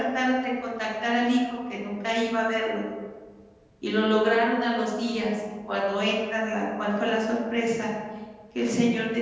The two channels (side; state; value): both; identical; correlation 1.00